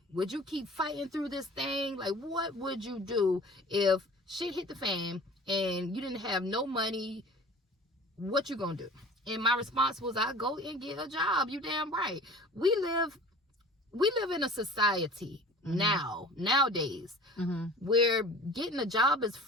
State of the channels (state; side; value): normal; both; correlation 0.42